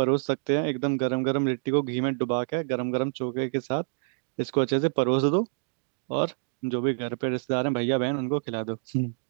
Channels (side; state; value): left; silent; digital silence